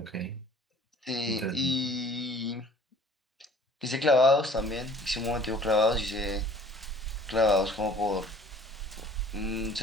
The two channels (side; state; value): both; normal; correlation 0.51